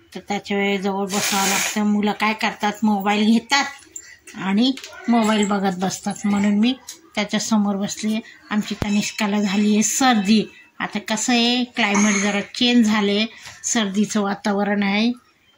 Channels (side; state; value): both; identical; correlation 1.00